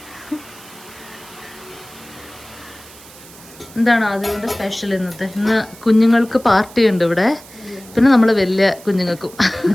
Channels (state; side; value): noise; right; hiss, 20 dB below the sound